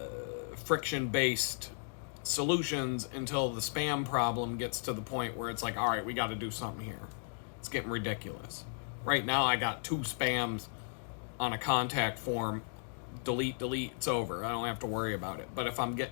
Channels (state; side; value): silent; right; digital silence